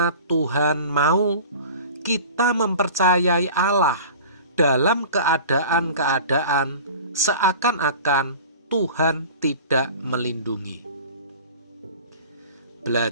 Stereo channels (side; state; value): both; inverted; correlation -0.40